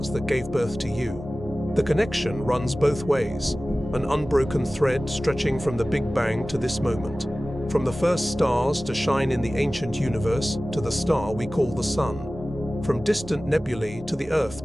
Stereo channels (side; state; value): both; normal; correlation 0.97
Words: that gave birth to you. The connection runs both ways, an unbroken thread stretching from the Big Bang to this moment, from the first stars to shine in the ancient universe to the star we call the Sun. from distant nebulae to the